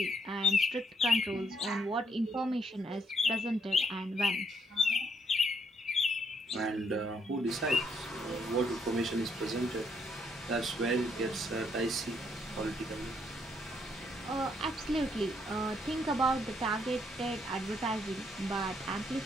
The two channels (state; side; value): normal; both; correlation 0.72